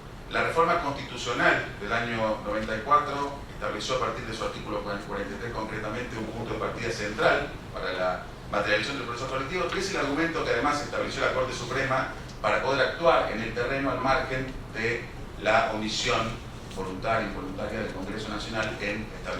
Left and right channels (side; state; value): both; identical; correlation 1.00